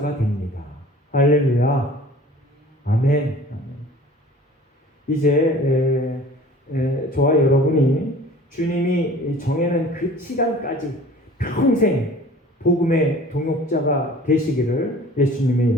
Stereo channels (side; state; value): both; normal; correlation 0.46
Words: 됩니다. 할렐루야. 아멘. 이제 저와 여러분이 주님이 정해놓은 그 시간까지 평생 복음의 동역자가 되시기를 예수님의